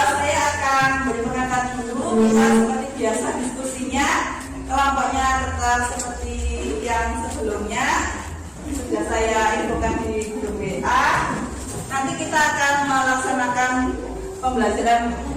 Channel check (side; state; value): both; identical; correlation 1.00